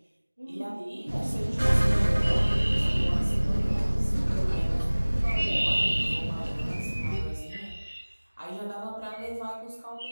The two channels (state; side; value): inverted; both; correlation -1.00